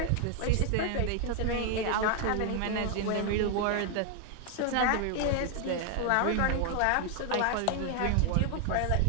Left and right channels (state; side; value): different; both; correlation 0.00